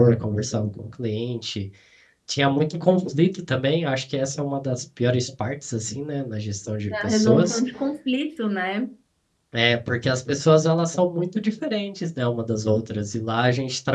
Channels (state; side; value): identical; both; correlation 1.00